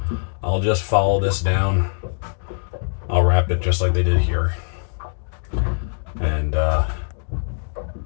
I'll just follow this down. I'll wrap it just like they did here. And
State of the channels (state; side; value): silent; right; digital silence